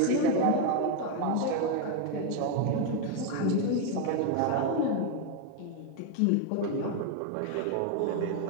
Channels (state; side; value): different; both; correlation 0.01